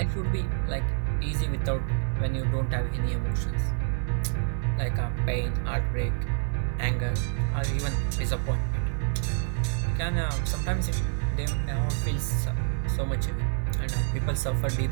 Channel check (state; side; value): silent; left; digital silence